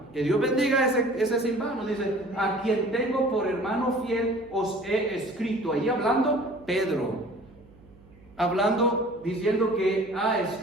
que Dios bendiga ese Silvano, dice, a quien tengo por hermano fiel os he escrito. Ahí hablando Pedro, diciendo que ha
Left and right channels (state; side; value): noise; right; hum, 25 dB below the sound